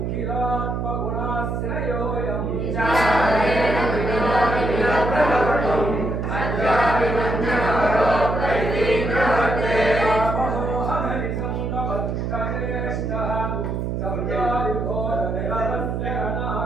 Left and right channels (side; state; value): right; noise; hum, 2 dB below the sound